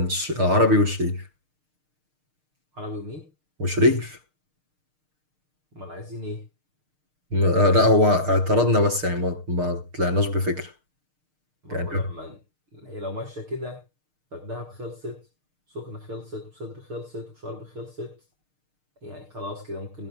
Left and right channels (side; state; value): left; late; 6.6 ms